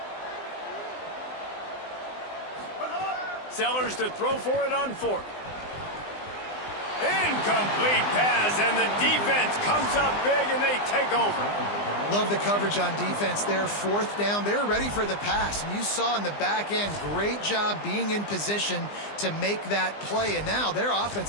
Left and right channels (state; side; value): late; right; 20 ms